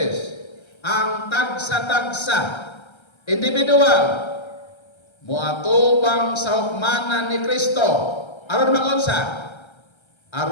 Ang tagsa-tagsa individual moatubang sa hukmanan ni Kristo aron magunsa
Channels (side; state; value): right; late; 1.3 ms